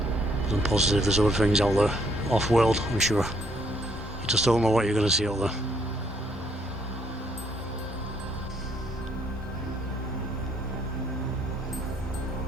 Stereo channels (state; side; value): normal; both; correlation 0.68